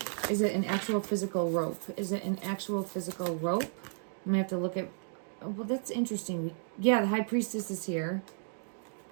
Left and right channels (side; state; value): left; silent; digital silence